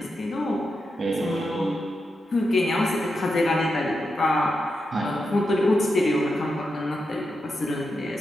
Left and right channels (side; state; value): both; normal; correlation 0.87